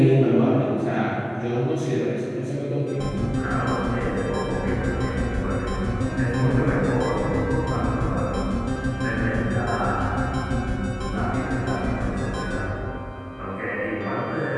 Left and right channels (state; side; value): identical; both; correlation 1.00